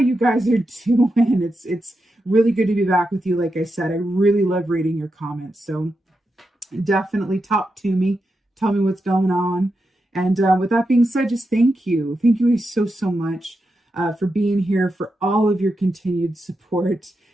guys are doing. It's really good to be back with you. Like I said, I really love reading your comments. So definitely talk to me. Tell me what's going on. And with that being said, just thank you. Thank you so, so much for being here, for all of your continued support.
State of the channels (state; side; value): normal; both; correlation 0.87